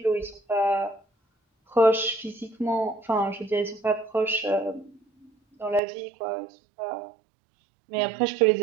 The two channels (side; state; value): left; drops out; at 5.8 s